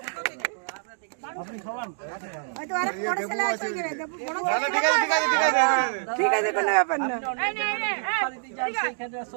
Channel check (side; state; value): left; silent; digital silence